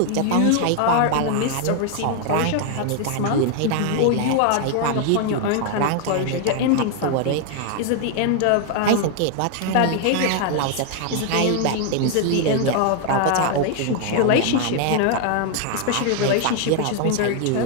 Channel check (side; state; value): both; different; correlation 0.00